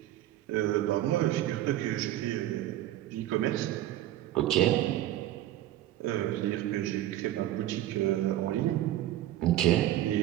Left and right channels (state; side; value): quieter; left; 13.7 dB